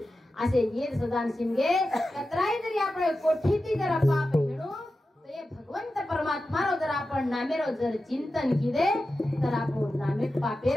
असे येद सदा शिनगे कतराई जरी आपण कोठीती जर पाप हेणू तर हे भगवंत परमात्मारो जर आपण नामेरो जर चिंतन किदे तर आपण नामे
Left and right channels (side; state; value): both; normal; correlation 0.92